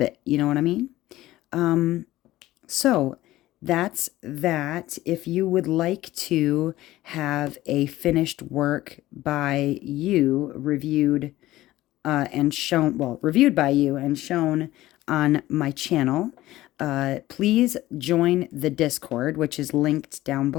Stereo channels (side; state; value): right; quieter; 16.2 dB